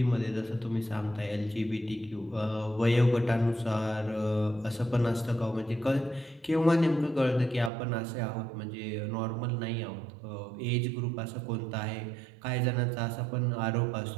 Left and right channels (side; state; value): left; drops out; at 7.7 s